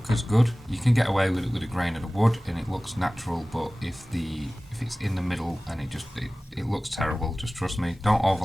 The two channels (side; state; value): both; normal; correlation 0.97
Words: as good. You can get away with it with a grain of the wood and it looks natural, but if it's in the middle and it looks terrible, just trust me, don't